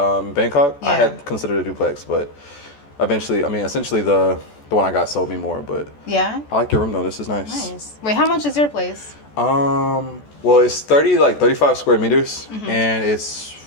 in Bangkok, I Yeah. had considered a duplex, but eventually, I mean, essentially the one I got sold me more. But Yeah. I like your room though. This is nice. Nice. Wait, how much is your place? Well, it's 35 square meters, and it's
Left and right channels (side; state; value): right; late; 14 ms